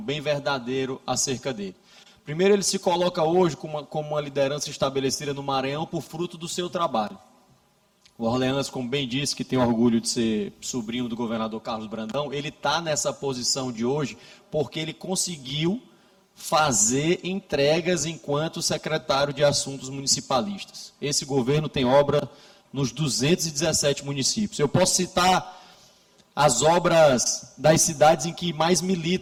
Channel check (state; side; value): identical; both; correlation 1.00